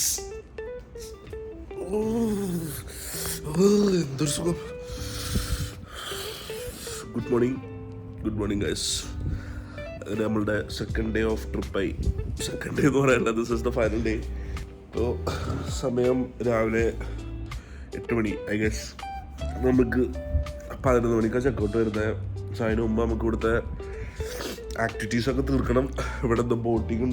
എന്തൊരു സുഖം. Good morning guys. അങ്ങനെ നമ്മളുടെ സെക്കൻഡ് ഡേ ഓഫ് ട്രിപ്പായി. സെക്കൻഡ് ഡേ എന്ന് പറയണ്ട, this is the final day. ഇപ്പോൾ സമയം രാവിലെ 8 മണി. ഐ ഗസ് നമുക്ക് 11 മണിക്കാണ് ചെക്കൗട്ട് വരുന്നത്. പക്ഷേ അതിന് മുമ്പ് നമുക്ക് ഇവിടുത്തെ ആക്ടിവിറ്റീസൊക്കെ തീർക്കണം. ഇവിടെ എന്താ ബോട്ടിങ്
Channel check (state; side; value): identical; both; correlation 1.00